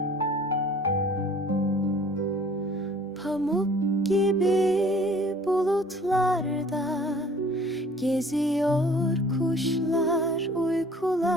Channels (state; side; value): normal; both; correlation 0.52